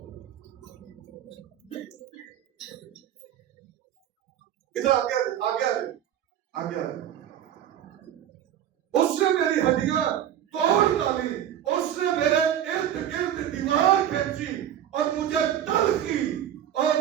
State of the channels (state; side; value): quieter; left; 10.7 dB